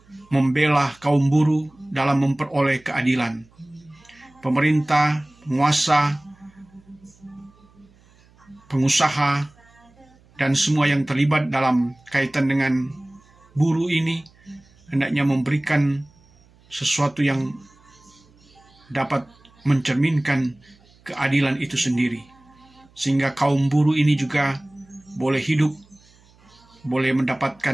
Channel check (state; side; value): noise; right; hum, 30 dB below the sound